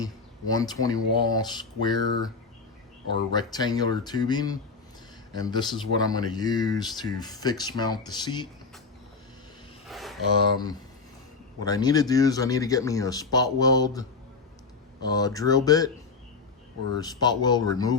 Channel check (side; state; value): right; quieter; 4.6 dB